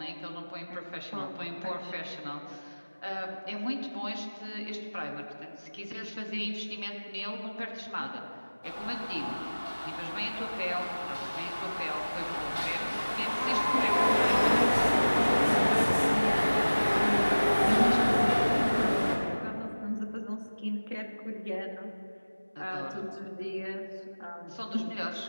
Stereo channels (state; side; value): inverted; both; correlation -1.00